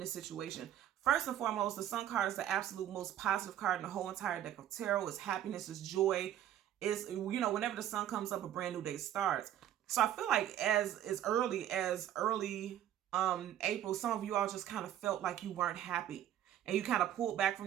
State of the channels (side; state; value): left; quieter; 11.4 dB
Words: the situation. First and foremost, the Sun card is the absolute most positive card in the whole entire deck of tarot. It's happiness, it's joy. It's, you know, whenever the sun comes up, a brand new day starts. So I feel like as early April, some of you all just kind of felt like you weren't happy and you kind of pulled back from